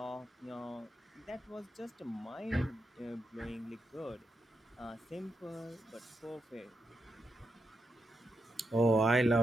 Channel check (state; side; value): normal; both; correlation 0.85